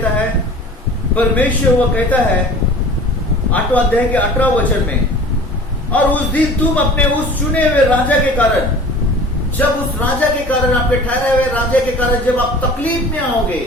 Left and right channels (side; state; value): both; normal; correlation 0.43